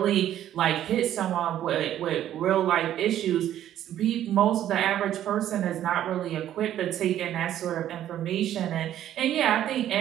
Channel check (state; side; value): quieter; left; 11.7 dB